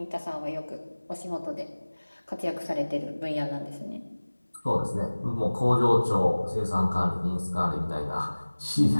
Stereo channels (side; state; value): both; inverted; correlation -1.00